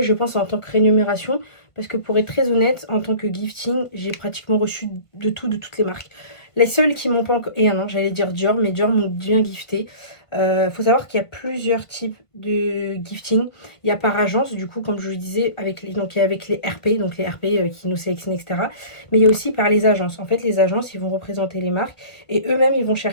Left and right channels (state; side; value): late; right; 1.5 ms